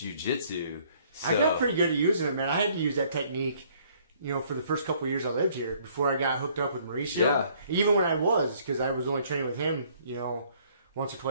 So, I got pretty good at using it, man. I had to use that technique, you know, for the first couple of years I lived here before I got hooked up with Mauricio. Yeah. Even when I was, because I was only training with him, you know, once or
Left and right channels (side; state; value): both; inverted; correlation -0.62